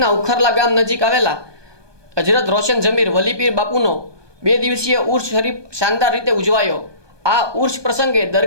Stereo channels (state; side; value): late; left; 1.2 ms